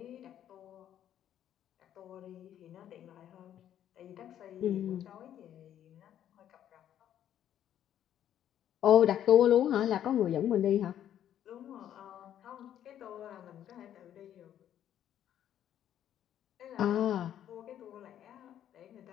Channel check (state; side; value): quieter; right; 10.7 dB